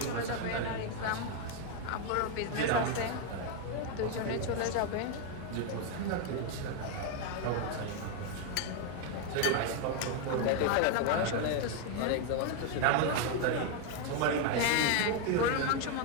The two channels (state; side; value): different; both; correlation 0.01